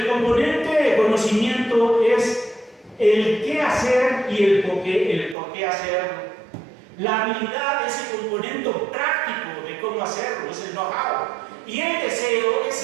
componente de conocimiento es el qué hacer y el por qué hacerlo. La habilidad es el componente práctico de cómo hacerlo, es el know-how. Y el deseo es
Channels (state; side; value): drops out; left; at 5.4 s